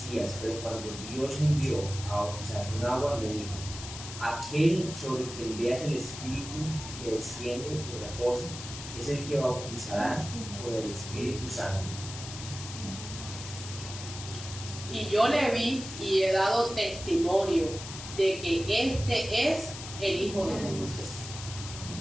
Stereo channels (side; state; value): left; noise; hiss, 10 dB below the sound